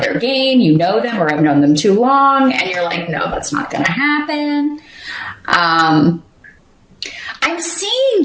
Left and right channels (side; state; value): both; identical; correlation 1.00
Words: game, you know them or have known them too long, and you're like, no, that's not going to happen. I'm seeing